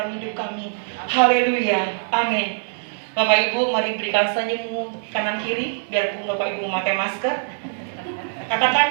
hidup kami. Haleluya, amin. Bapak Ibu, mari berikan senyummu kanan kiri, biarpun Bapak Ibu memakai masker.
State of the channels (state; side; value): silent; left; 64 dB below the other